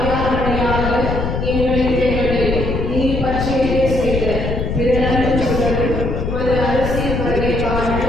எங்களின் தேவனை நீர் பற்றியே செய்த பிறரும் உமது அரசியல் வருகைக்கான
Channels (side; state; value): left; noise; rumble, 2 dB below the sound